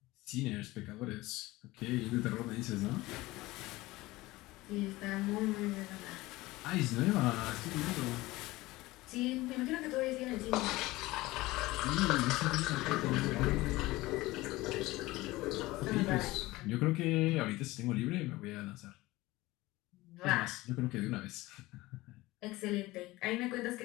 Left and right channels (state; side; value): quieter; right; 19.4 dB